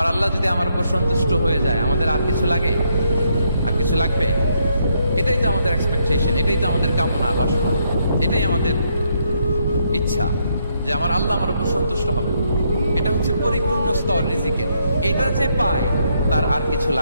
আল্লাহ যদি আমার উপর সন্তুষ্ট হয়ে যায়, আমাদের আর কিছু লাগে? আর কিছু লাগবে? এটাই তো আমাদের এক্সপেকটেশন, এটাই তো আমাদের কামনা বাসনা, এটাই আমাদের ইচ্ছা যে আমার আল্লাহ আমার উপর সন্তুষ্ট হবে। এটা হচ্ছে পরিপূর্ণ স্তর রিজিকের। এটা যে পায় তার আর কিছু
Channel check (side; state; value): both; inverted; correlation -0.75